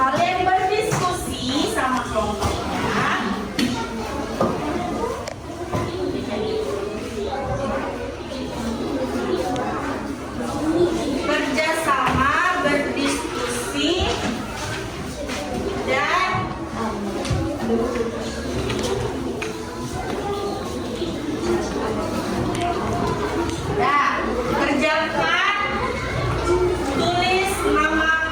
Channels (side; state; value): both; identical; correlation 1.00